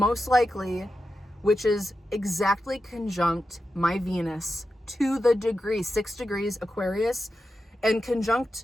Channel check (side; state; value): both; normal; correlation 0.90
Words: likely, which is exactly conjunct my Venus to the degree, 6 degrees Aquarius, and